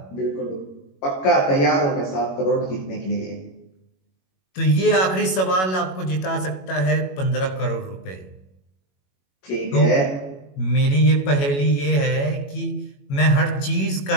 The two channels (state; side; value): late; right; 21 ms